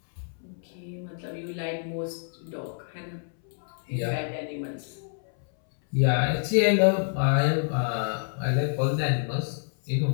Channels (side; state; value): right; silent; 60 dB below the other